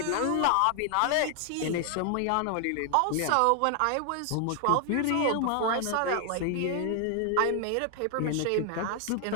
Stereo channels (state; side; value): different; both; correlation 0.00